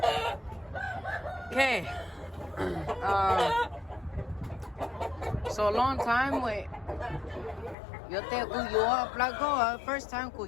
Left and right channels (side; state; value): right; drops out; at 7.8 s